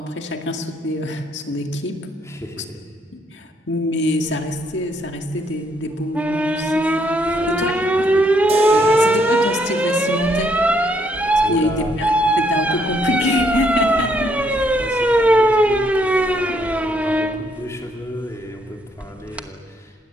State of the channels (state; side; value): normal; both; correlation 0.71